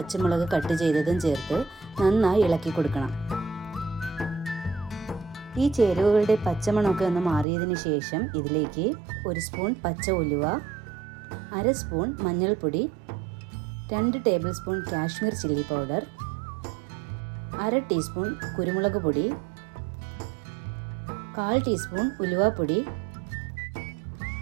കട്ട് ചെയ്തതും ചേർത്ത് നന്നായി ഇളക്കി കൊടുക്കണം. ഈ ചേരുവകളുടെ പച്ചമണമൊക്കെ ഒന്ന് മാറിയതിന് ശേഷം ഇതിലേക്ക് 1 സ്പൂൺ പച്ച ഉലുവ, 1/2 സ്പൂൺ മഞ്ഞൾപ്പൊടി, 2 table spoon Kashmir chilli powder, 1/2 teaspoon കുരുമുളക് പൊടി, 1/4 ടീസ്പൂൺ ഉലുവപ്പൊടി.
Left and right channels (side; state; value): left; drops out; at 7.5 s